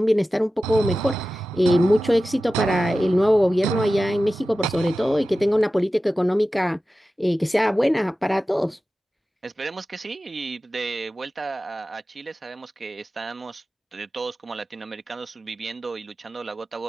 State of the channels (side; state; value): both; normal; correlation 0.94